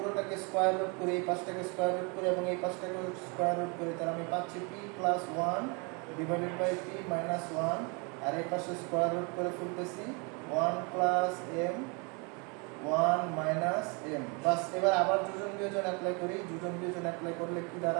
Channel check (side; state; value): left; quieter; 32.1 dB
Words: স্কোয়ার রুট করি, এই পাশটাকে স্কোয়ার রুট করি এবং এই পাশটাকে স্কোয়ার রুট করি, তাহলে আমি পাচ্ছি p plus one divided by p minus one. আর এই পাশে স্কোয়ার রুট করে ফেলতেছি one plus m one minus m. বাস, এবার আবার যোজন বিয়োজন অ্যাপ্লাই করি। যোজন বিয়োজন অ্যাপ্লাই করলে কি